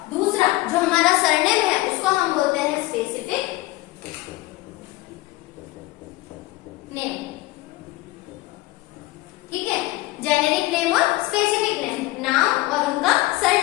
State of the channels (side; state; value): right; quieter; 19.5 dB